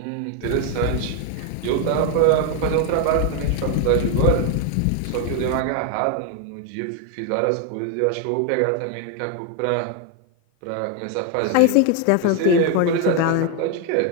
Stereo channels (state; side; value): different; both; correlation 0.01